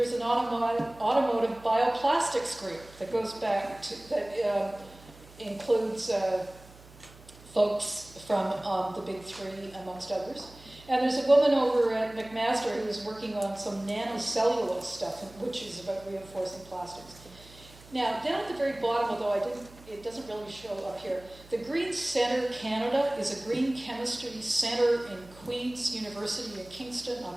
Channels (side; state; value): right; noise; hum, 22 dB below the sound